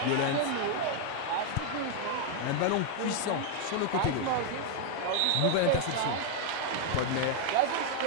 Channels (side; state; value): both; different; correlation 0.00